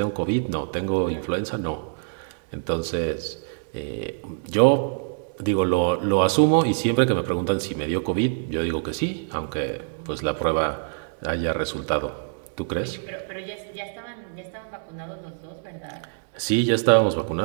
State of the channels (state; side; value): silent; left; digital silence